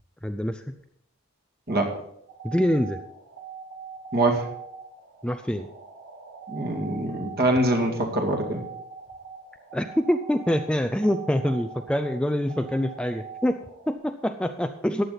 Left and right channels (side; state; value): both; normal; correlation 0.73